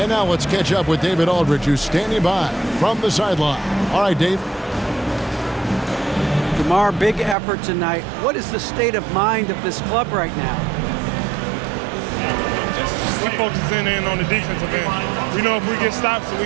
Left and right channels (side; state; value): left; drops out; at 7.4 s